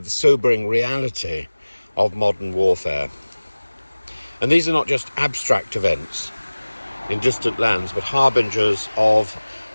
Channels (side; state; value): both; inverted; correlation -1.00